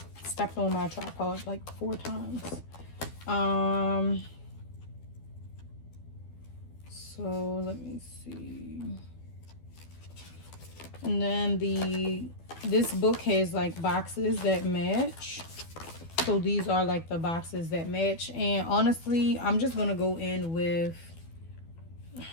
stepped on my tripod like 4 times. So let me see. And then this book has like boxes that match. So these are like the boxes that match. And honestly, I'm just gonna go in with,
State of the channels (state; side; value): late; right; 12 ms